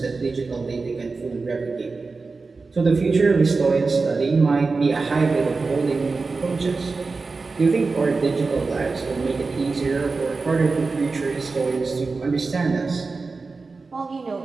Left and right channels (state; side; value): quieter; left; 4.1 dB